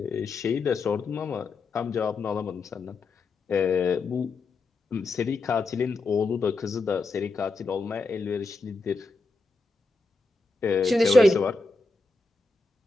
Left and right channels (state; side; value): quieter; right; 3.5 dB